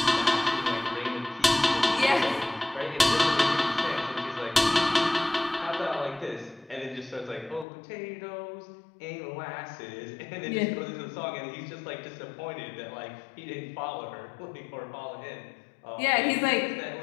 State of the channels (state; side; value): drops out; right; at 7.7 s